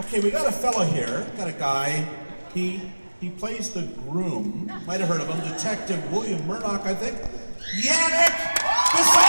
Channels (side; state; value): both; inverted; correlation -1.00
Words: we got a fellow here, got a guy. He plays the groom. Might have heard of him, Detective William Murdoch, I think. Yannick